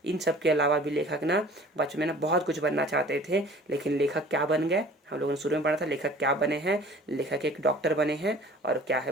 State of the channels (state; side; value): normal; both; correlation 0.48